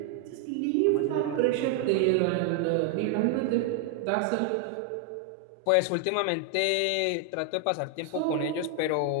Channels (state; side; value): different; both; correlation 0.00